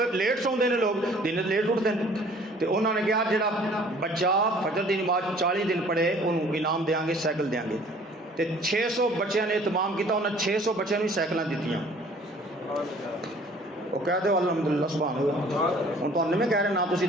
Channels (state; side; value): normal; both; correlation 0.53